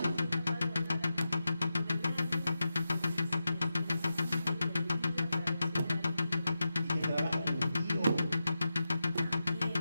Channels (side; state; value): both; inverted; correlation -0.91